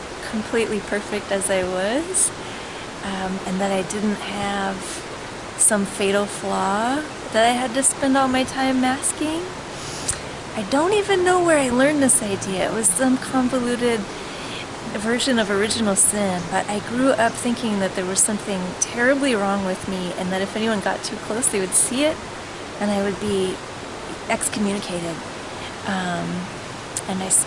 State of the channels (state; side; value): identical; both; correlation 1.00